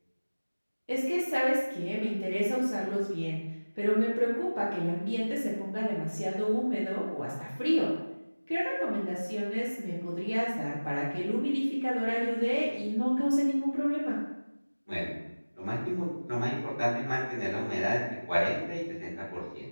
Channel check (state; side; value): inverted; both; correlation -1.00